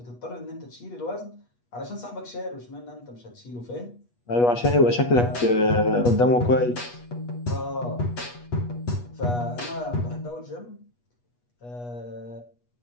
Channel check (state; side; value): late; right; 8.3 ms